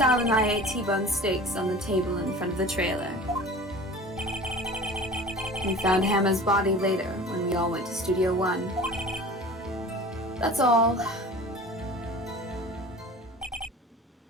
and I ate T-bone steaks on the table in front of the trailer. We found Hannah's body later when we all went to Studio 1. That's all.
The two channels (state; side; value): normal; both; correlation 0.40